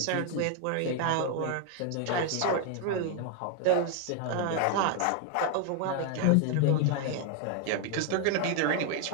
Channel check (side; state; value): both; different; correlation 0.01